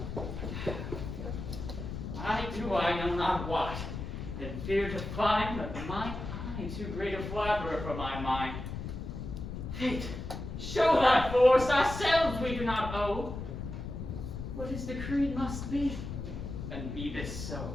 I know not what, and fear to find that mine eye too great a flatterer for my mind. Fate, show thy force, ourselves we do not owe. What is decreed must be, and be this so.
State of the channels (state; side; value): noise; left; rumble, 7 dB below the sound